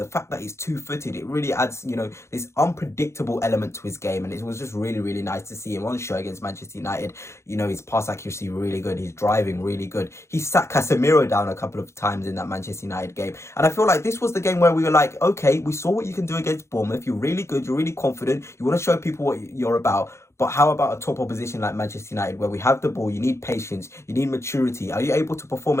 fact that he's two-footed, it really adds, this unpredictable element to his game. And it was just really, really nice to see him on show against Manchester United. His pass accuracy really good. He's driving really good. He sat Casemiro down a couple of times in that Manchester United game. And I feel like this was the game where we were like, okay, we saw what you can do against Bournemouth. You're really good. You're really confident. You want to show people what you're about. But how about a top opposition like Manchester United, where we have the ball, you need patience, you need maturity. Are you able to perform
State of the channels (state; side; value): late; right; 0.13 ms